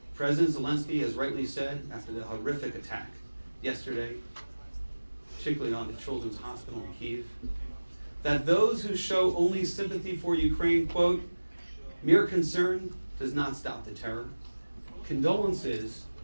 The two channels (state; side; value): inverted; both; correlation -1.00